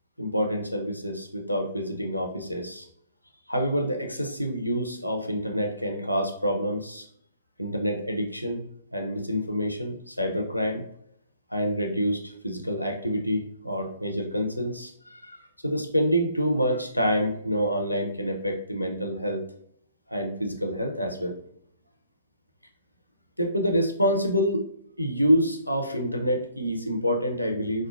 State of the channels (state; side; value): inverted; both; correlation -0.68